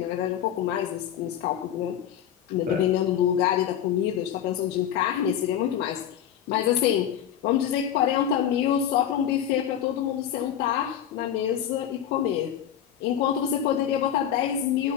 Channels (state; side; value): quieter; right; 9.9 dB